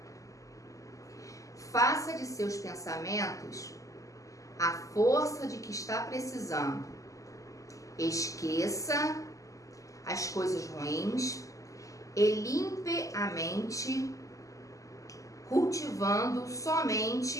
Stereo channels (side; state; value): right; late; 0.16 ms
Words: Faça de seus pensamentos a força de que está precisando. Esqueça as coisas ruins e limpe a mente, cultivando